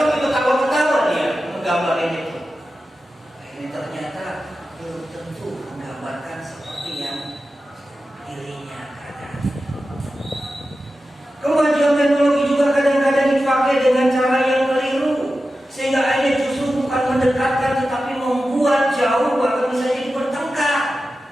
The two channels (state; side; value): normal; both; correlation 0.92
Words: ketawa-ketawa dia menggambarin itu. Ini ternyata belum tentu menggambarkan seperti yang dirinya katakan. Kemajuan teknologi juga juga kadang-kadang dipakai dengan cara yang keliru, sehingga akhirnya justru bukan mendekatkan tetapi membuat jauh, bahkan bisa jadi bertengkar.